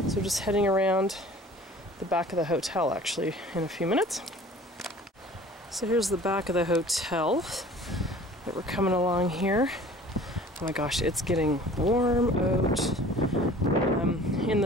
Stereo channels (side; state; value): both; normal; correlation 0.47